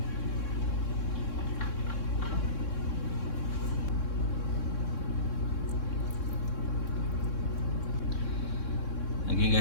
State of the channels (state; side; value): late; right; 3.6 ms